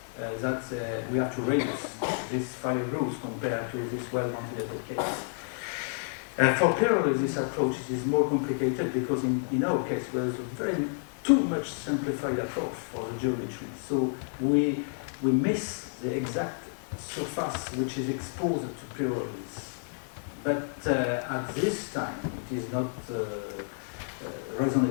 that we have to reduce this fire growth compared to this well-ventilated case. For pyrolysis approach, it is more complicated because in our case, there is a very too much simplified approach for the geometry. So we miss the exact surface which is exposed to pyrolysis. But at this time, it is not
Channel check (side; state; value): right; silent; digital silence